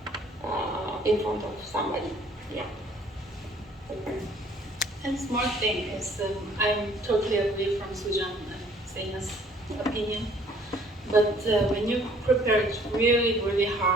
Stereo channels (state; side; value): normal; both; correlation 0.58